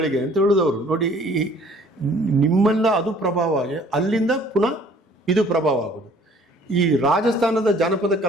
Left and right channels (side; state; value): both; normal; correlation 0.55